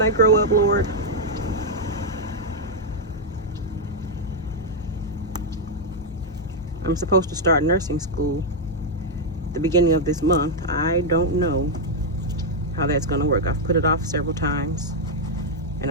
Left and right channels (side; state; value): both; normal; correlation -0.01